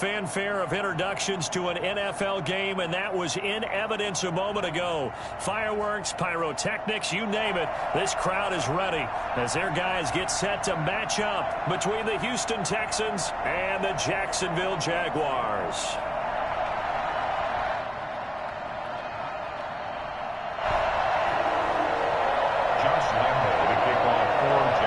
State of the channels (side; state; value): both; identical; correlation 1.00